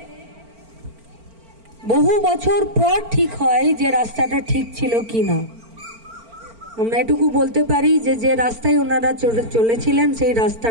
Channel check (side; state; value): left; late; 4.4 ms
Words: বহু বছর পর ঠিক হয় যে রাস্তাটা ঠিক ছিল কি না। আমরা এটুকু বলতে পারি যে যে রাস্তায় ওনারা চলেছিলেন সেই